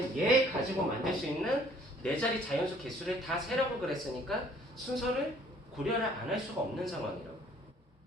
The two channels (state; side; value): normal; both; correlation 0.58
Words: 얘 가지고 만들 수 있는 4자리 자연수 개수를 다 세라고 그랬으니까 순서를 고려를 안 할 수가 없는 상황이라고.